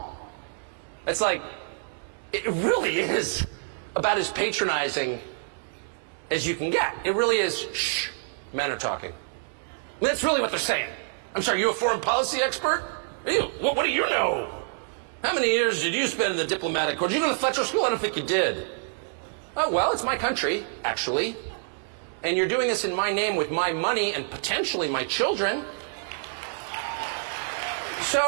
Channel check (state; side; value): silent; left; digital silence